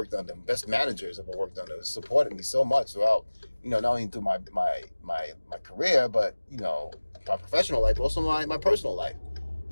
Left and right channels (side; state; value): both; inverted; correlation -1.00